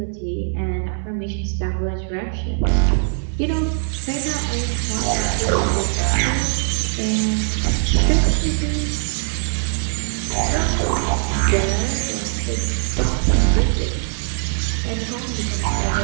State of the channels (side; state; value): left; silent; 57 dB below the other